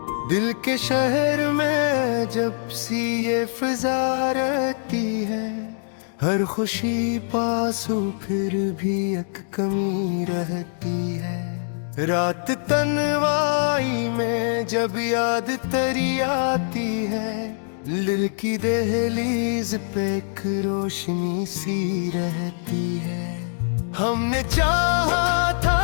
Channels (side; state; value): right; silent; digital silence